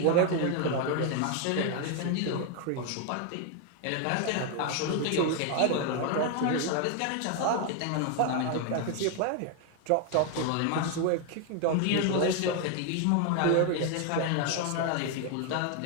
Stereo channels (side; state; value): both; different; correlation 0.01